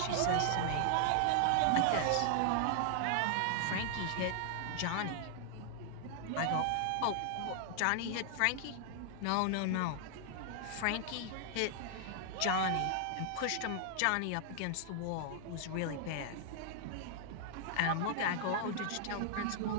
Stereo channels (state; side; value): different; both; correlation 0.00